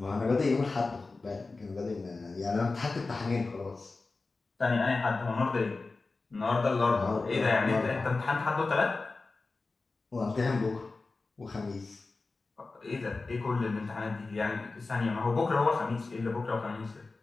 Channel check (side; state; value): right; quieter; 3.7 dB